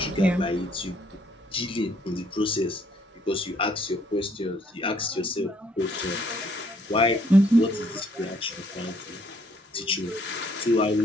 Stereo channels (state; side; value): normal; both; correlation 0.66